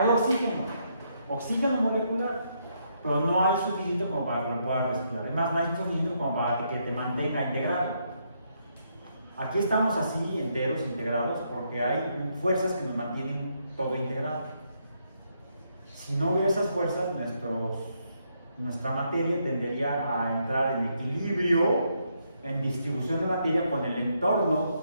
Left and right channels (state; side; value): inverted; both; correlation -0.76